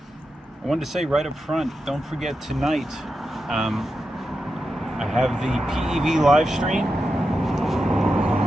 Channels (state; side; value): normal; both; correlation 0.89